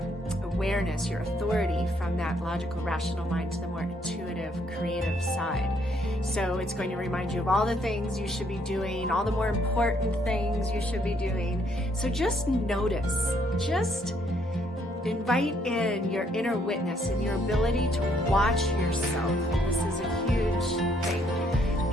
awareness, your authority from that logical, rational mind to the more intuitive, creative side. So it's going to remind you of all the things you should be doing, all the more important things you should be doing. So just notice, just invite in your inner witness and your ability to watch yourself. This is a huge thing,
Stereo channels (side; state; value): both; normal; correlation 0.69